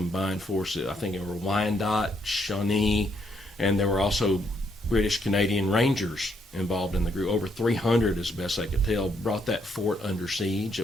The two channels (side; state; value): both; normal; correlation 0.74